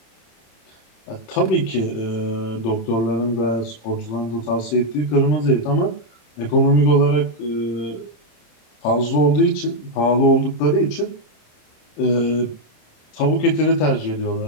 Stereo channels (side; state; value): right; late; 27 ms